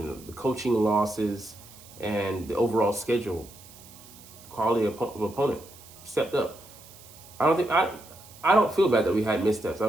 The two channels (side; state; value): right; noise; hiss, 21 dB below the sound